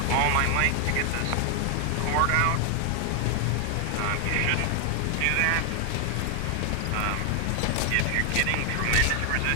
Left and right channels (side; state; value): both; different; correlation 0.00